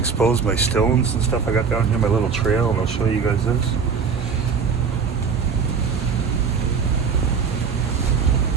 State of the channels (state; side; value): quieter; left; 5.9 dB